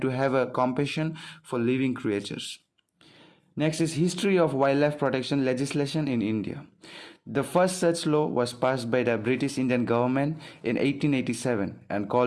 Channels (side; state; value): both; identical; correlation 1.00